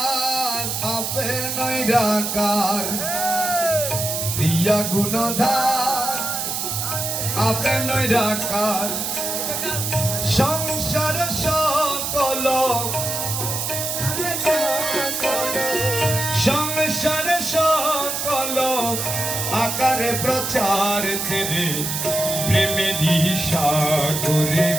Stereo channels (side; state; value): right; noise; hiss, 2 dB below the sound